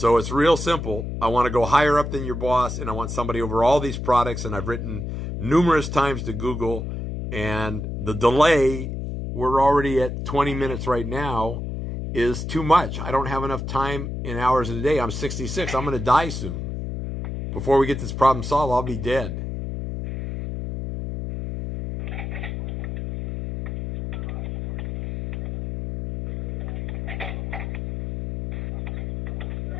it's real simple. I want to go higher up than your boss, and I want somebody over all these products, and I've written numerous times to Google, and the delay, we're already at 20 minutes right now, is too much. I don't have enough time in hours in a day. I'm 66. I'm going to die soon. Before we get this problem solved, I'll be dead.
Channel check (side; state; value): left; noise; hum, 5 dB below the sound